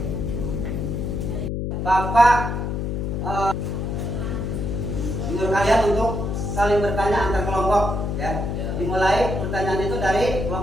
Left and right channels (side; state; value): left; noise; hum, 2 dB below the sound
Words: Bapak menyuruh kalian untuk saling bertanya antar kelompok ya. Dimulai pertanyaan itu dari